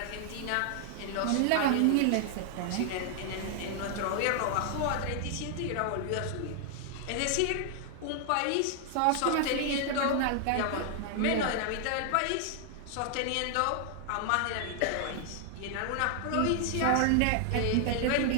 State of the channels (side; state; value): both; different; correlation 0.00